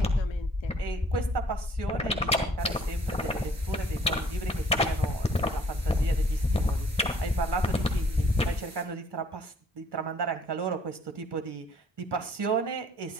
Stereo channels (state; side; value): normal; both; correlation 0.59